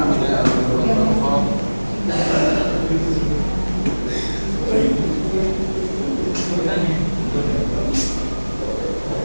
nama saya Abdullah.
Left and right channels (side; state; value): both; inverted; correlation -1.00